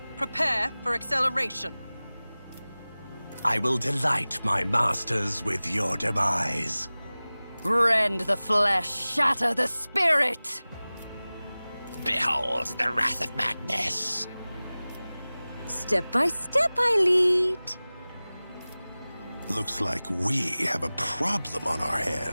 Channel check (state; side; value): inverted; both; correlation -0.98